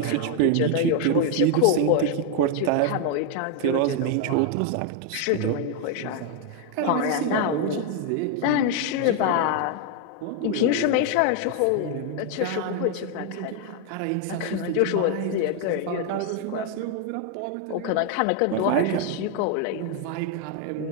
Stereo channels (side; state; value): both; different; correlation 0.01